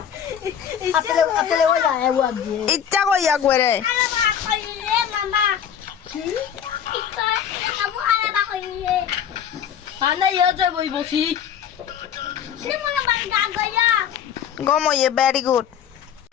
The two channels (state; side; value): quieter; right; 8.8 dB